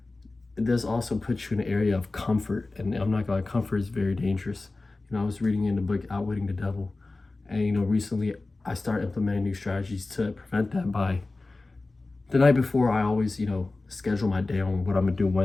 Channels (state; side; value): quieter; right; 3.3 dB